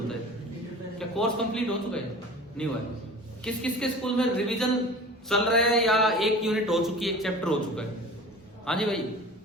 है? क्या कोर्स कंप्लीट हो चुका है? नहीं हुआ है। किस किस के स्कूल में रिवीजन चल रहा है या एक यूनिट हो चुकी है, एक चैप्टर हो चुका है? हाँ जी भाई,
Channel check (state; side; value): normal; both; correlation 0.39